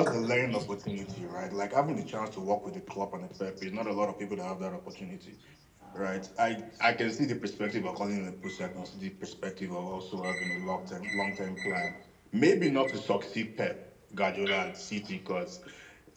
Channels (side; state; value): both; identical; correlation 1.00